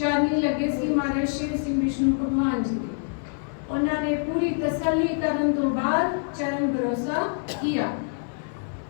लगे सी महाराज शेर सिंह विष्णु भगवान जी के। उन्होंने पूरी तसल्ली करने तो बाद चरण भरोसा किया।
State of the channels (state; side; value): silent; right; 56 dB below the other